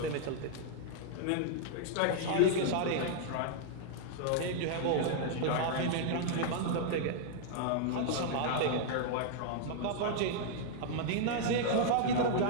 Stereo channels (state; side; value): different; both; correlation -0.01